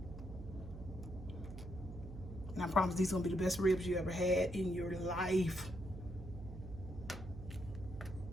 And I promise these are going to be the best ribs you ever had in your life.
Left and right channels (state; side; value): noise; right; hum, 11 dB below the sound